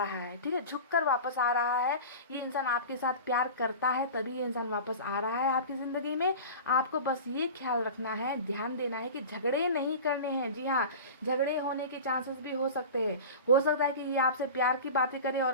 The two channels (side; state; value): both; inverted; correlation -0.33